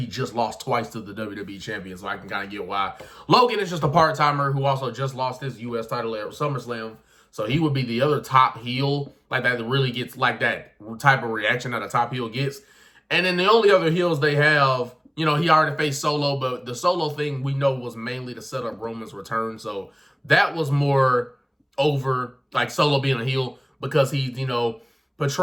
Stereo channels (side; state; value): both; identical; correlation 1.00